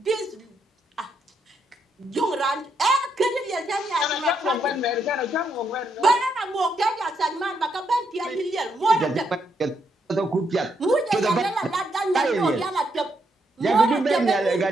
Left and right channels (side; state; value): both; normal; correlation 0.77